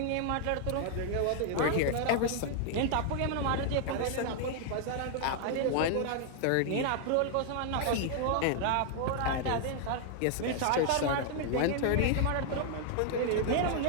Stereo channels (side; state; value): both; different; correlation 0.00